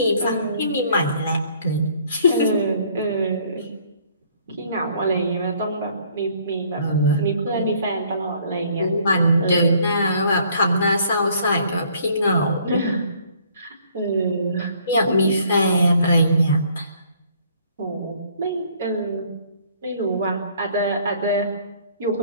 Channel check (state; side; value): inverted; both; correlation -0.60